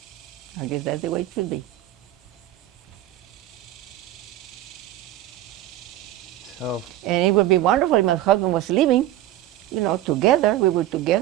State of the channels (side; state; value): left; quieter; 13.6 dB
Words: I guess that's the way it should be. So, and it would be wonderful if my husband was living, together. We were